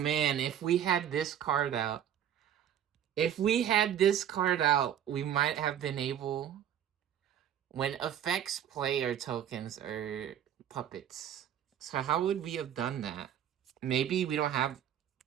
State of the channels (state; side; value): quieter; left; 10.0 dB